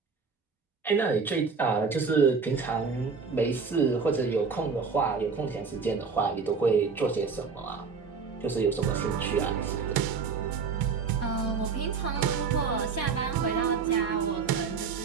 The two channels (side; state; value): left; quieter; 5.3 dB